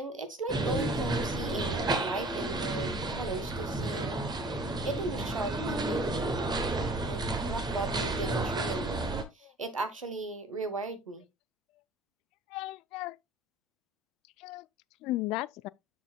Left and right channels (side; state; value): both; normal; correlation 0.46